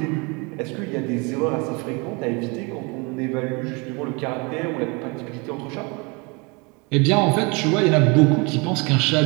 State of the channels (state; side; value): quieter; left; 29.4 dB